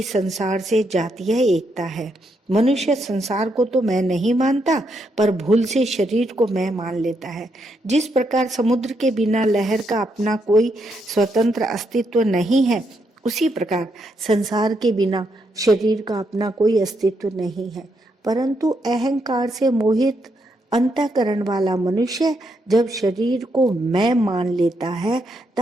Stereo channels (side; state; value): both; normal; correlation 0.78